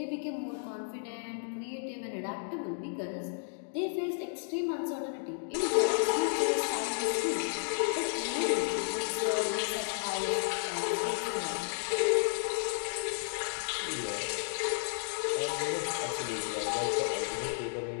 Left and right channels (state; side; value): silent; right; digital silence